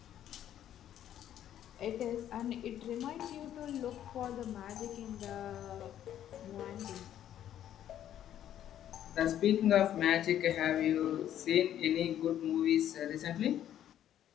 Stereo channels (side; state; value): right; quieter; 11.1 dB